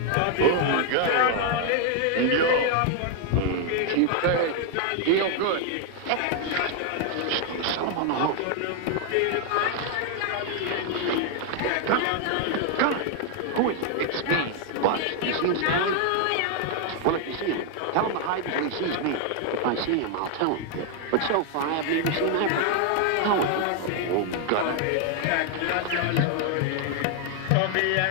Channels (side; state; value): both; different; correlation 0.00